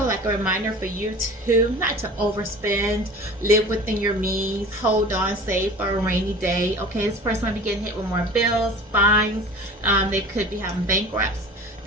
like a reminder for you to not to overspend, live within your means, hold on, save for a rainy day. Okay, this person might be getting hit with more bills, fines. They could be having bankrupts.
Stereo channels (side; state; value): both; normal; correlation 0.40